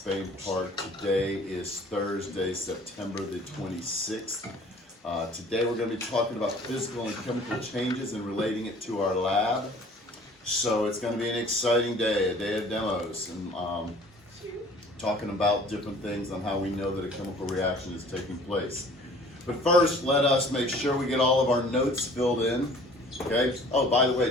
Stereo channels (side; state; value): both; normal; correlation 0.50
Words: Park. Today is Thursday, September the 26th. Today we're going to be talking about physical and chemical changes and relating it to our lab. So it's going to be an exciting day, a day of demos, and talking about different things on how we know that a chemical reaction is taking place. But first, let us make sure we get all of our notes filled in. Okay. Oh, by the